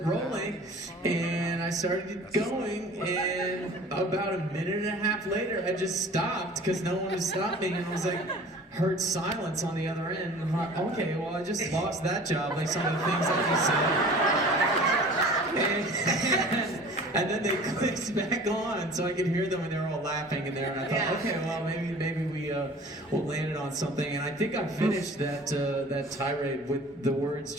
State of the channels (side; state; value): both; normal; correlation 0.44